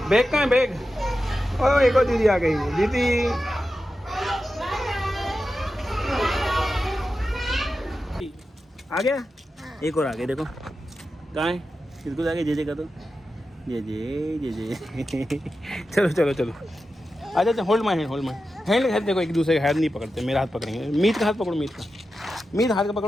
बैग कहाँ है बैग? ओ एक और दीदी आ गई। दीदी आ गया, एक और आ गया। देखो कहाँ है, इसको जाके जे का तो जे चलो चलो चलो अच्छा अच्छा। Hold my hand hand. देखो एक दूसरे का हाथ नहीं पकड़ते, मेरा हाथ पकड़ेंगे। मीत का हाथ पकड़ो, मीत हाथ का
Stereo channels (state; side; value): normal; both; correlation 0.91